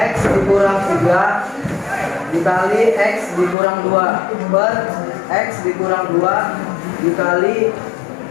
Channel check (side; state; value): right; drops out; at 3.6 s